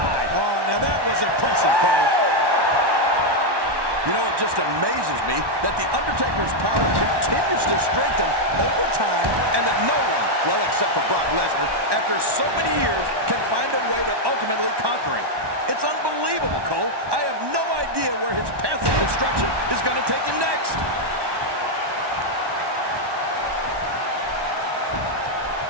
Oh, now that was impressive, Cole. You know, it just amazes me that The Undertaker's power continues to strengthen over time and that no one, well, except for Brock Lesnar, after so many years, can find a way to ultimately conquer him. It's unbelievable, Cole. I have no idea where his path of destruction is going to take him next.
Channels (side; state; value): left; late; 1.1 ms